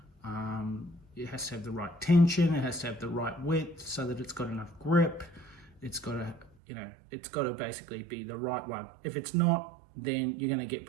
It has to have the right tension, it has to have the right width so that it's got enough grip. It's got to, it's got to basically be the right one. If it's not, then you're going to get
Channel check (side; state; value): left; drops out; at 6.5 s